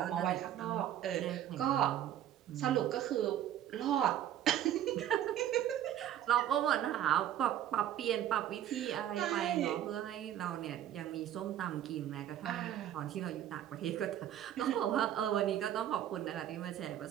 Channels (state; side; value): quieter; left; 11.3 dB